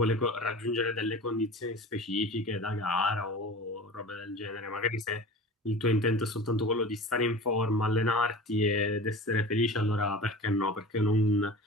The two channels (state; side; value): normal; both; correlation 0.37